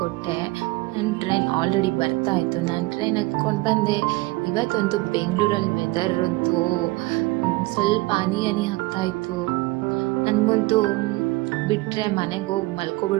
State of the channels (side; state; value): left; quieter; 21.5 dB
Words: ನನ್ನ ಟ್ರೈನ್ ಆಲ್ರೆಡಿ ಬರ್ತಾ ಇತ್ತು. ನಾನು ಟ್ರೈನ್ ಹತ್ಕೊಂಡು ಬಂದೆ. ಇವತ್ತಂತೂ ಬೆಂಗಳೂರಲ್ಲಿ ವೆದರ್ ಅಂತೂ ಸ್ವಲ್ಪ ಹನಿ ಆಗ್ತಾ ಇತ್ತು. ನನಗಂತೂ ಬಿಟ್ಟರೆ ಮನೆಗೆ ಹೋಗಿ